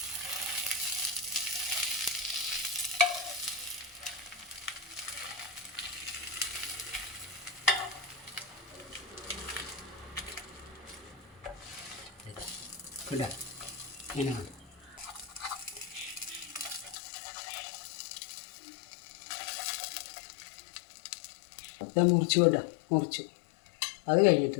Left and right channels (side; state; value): right; drops out; at 16.9 s